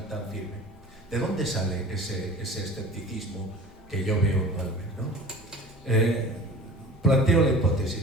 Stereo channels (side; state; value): both; normal; correlation 0.41